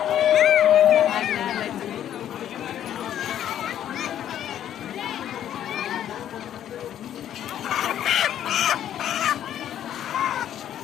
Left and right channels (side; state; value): right; quieter; 10.8 dB